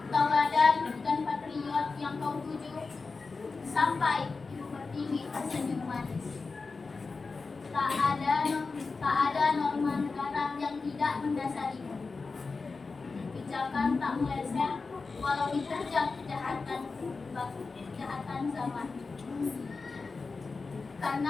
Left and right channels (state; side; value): quieter; right; 4.2 dB